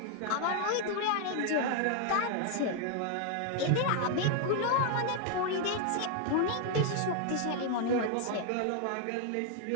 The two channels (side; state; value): both; different; correlation 0.00